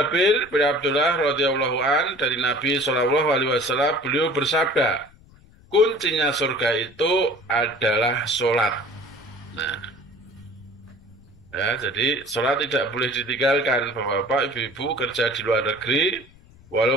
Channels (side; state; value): left; noise; rumble, 26 dB below the sound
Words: bin Abdullah radhiyallahu an dari Nabi sallallahu alaihi wasallam, beliau bersabda, kuncinya surga itu adalah sholat. Nah, ya, jadi sholat tidak boleh ditinggalkan. Bapak, Ibu-ibu kerja di luar negeri,